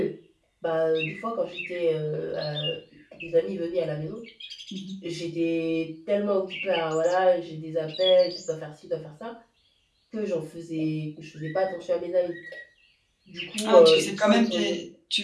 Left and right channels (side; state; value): both; identical; correlation 1.00